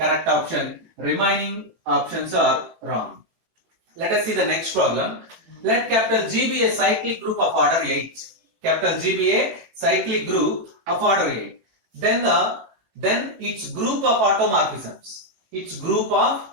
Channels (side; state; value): left; late; 18 ms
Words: option. Remaining options are wrong. Let us see the next problem. Let capital G be a cyclic group of order 8. Capital G be a cyclic group of order 8. Then its group of automorphisms. Its group of